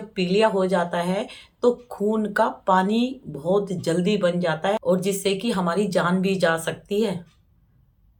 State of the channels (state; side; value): identical; both; correlation 1.00